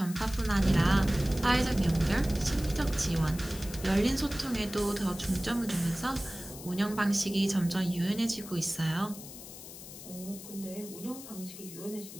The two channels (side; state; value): left; noise; hiss, 14 dB below the sound